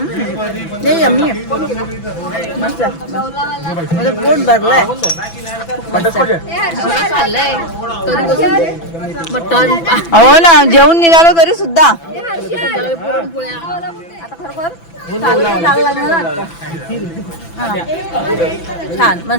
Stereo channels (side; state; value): right; late; 6.0 ms